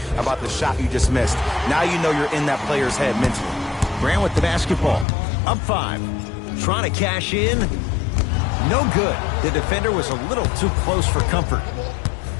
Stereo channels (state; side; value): drops out; right; at 5.1 s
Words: about the shot you just missed. Now you know you're in that player's head mentally. Grant with the basketball. Up 5. Trying to cash in. No good. The defender was a little too close for comfort.